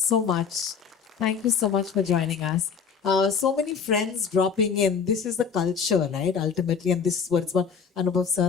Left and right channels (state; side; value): quieter; right; 6.3 dB